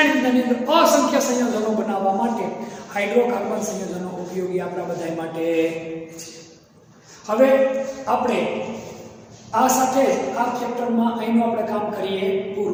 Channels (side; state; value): both; identical; correlation 1.00